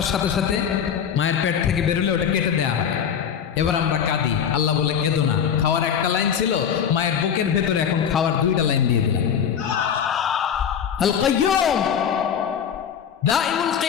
সাথে সাথে মায়ের পেট থেকে বেরোলে ওটা কেটে দেওয়া হয়। এবার আমরা কাঁদি, আল্লাহ বলে কেঁদো না, খাওয়ার একটা লাইন ছিল, মায়ের বুকের ভেতরে এখন খাওয়ার 2টা লাইন দিয়ে দিলাম। আল কাইয়ুম, দাইমুল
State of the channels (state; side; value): quieter; right; 8.0 dB